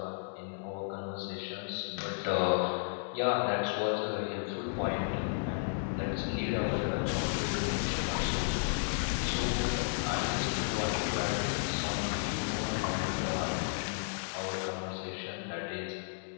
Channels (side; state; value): right; silent; digital silence